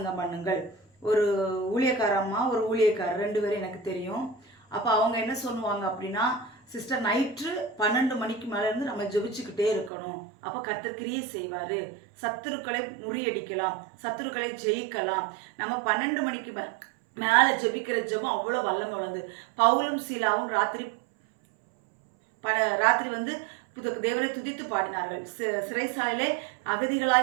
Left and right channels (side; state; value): left; drops out; at 9.9 s